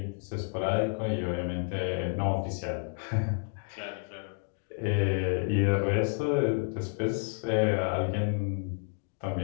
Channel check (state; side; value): silent; right; 58 dB below the other